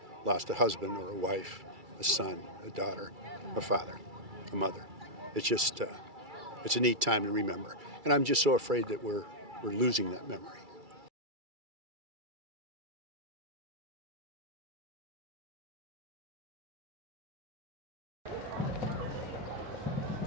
lost a husband or a wife, a son, a daughter, a father, a mother. It's just, it's a neat time to remember. And I'm just so afraid that we're losing that memory.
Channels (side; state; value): left; late; 2.3 ms